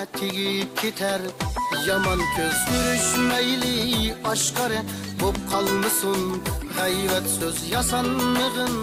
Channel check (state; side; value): identical; both; correlation 1.00